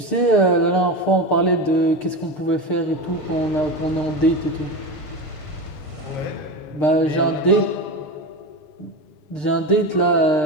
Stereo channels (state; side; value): late; right; 6.7 ms